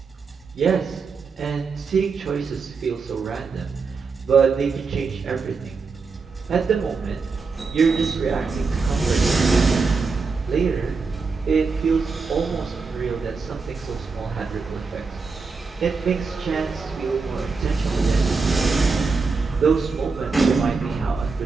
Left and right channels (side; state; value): left; quieter; 4.6 dB